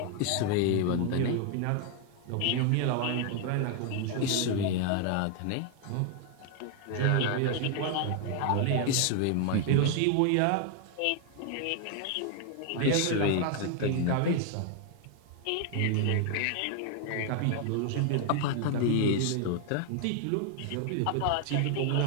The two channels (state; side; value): different; both; correlation 0.00